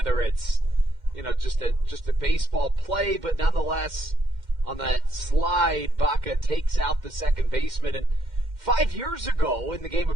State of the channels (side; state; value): left; late; 2.1 ms